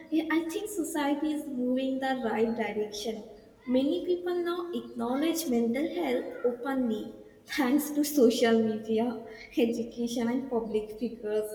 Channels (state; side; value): identical; both; correlation 1.00